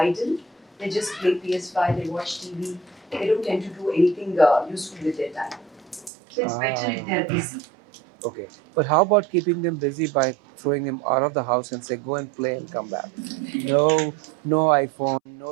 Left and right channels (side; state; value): left; drops out; at 6.1 s